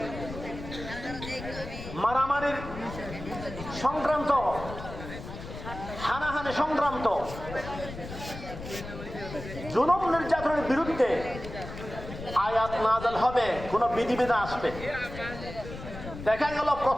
মারামারির সংক্রান্ত, হানাহানি সংক্রান্ত, জুলুম নির্যাতনের বিরুদ্ধে আয়াত নাযিল হবে, কোন বিধিবিধান আসবে। দেখা গেল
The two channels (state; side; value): noise; left; rumble, 11 dB below the sound